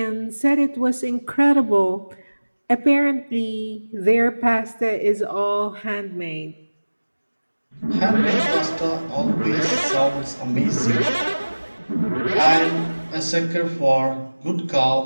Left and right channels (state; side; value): inverted; both; correlation -1.00